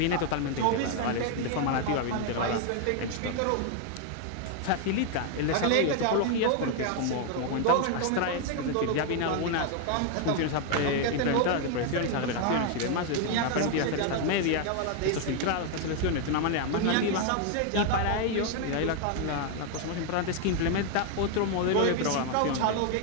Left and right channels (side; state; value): both; different; correlation 0.00